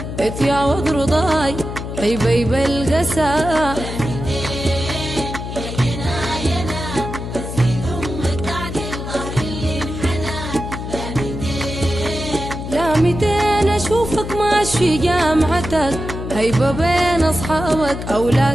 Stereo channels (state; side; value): noise; left; hum, 7 dB below the sound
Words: اتيعوض رضاي حبيب القسا. لا 200 أشوفك ماشي جامعتك هيبة بين أصحابك